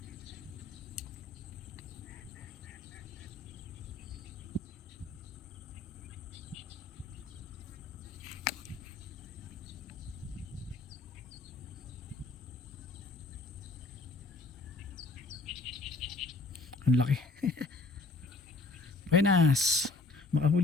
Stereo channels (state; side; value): quieter; right; 3.6 dB